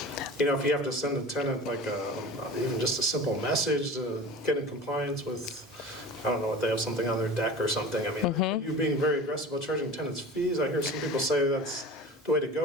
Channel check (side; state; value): both; normal; correlation 0.36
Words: you know, if you have to send a tenant like even just a simple message to get in compliance with, I don't know, what they have something on their deck or something. I mean, are you being very aggressive about charging tenants fees? I hear some people say that's the way to